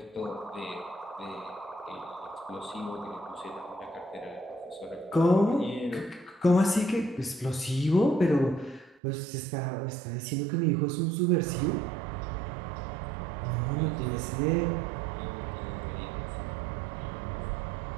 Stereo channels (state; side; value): drops out; left; at 9.0 s